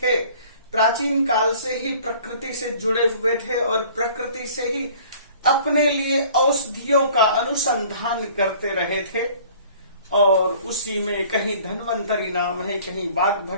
प्राचीन काल से ही प्रकृति से जुड़े हुए थे और प्रकृति से ही अपने लिए औषधियों का अनुसंधान करते रहे थे। और उसी में कहीं धन्वंतरी नाम है, कहीं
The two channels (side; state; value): both; inverted; correlation -0.51